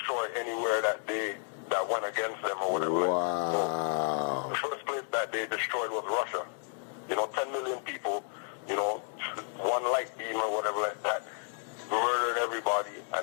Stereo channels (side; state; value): right; silent; 56 dB below the other